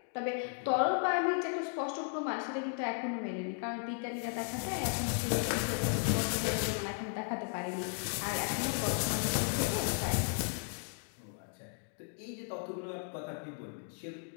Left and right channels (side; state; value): right; silent; 54 dB below the other